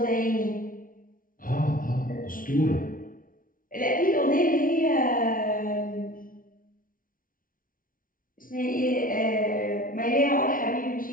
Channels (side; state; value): right; late; 0.40 ms